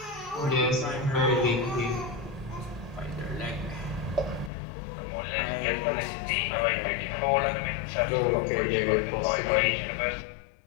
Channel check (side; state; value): right; drops out; at 4.5 s